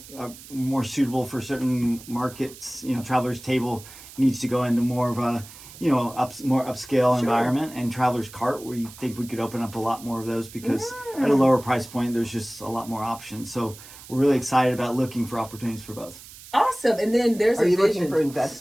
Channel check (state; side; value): noise; right; hiss, 18 dB below the sound